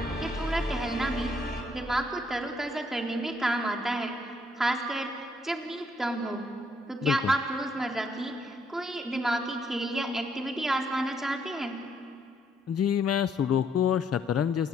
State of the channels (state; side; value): normal; both; correlation 0.70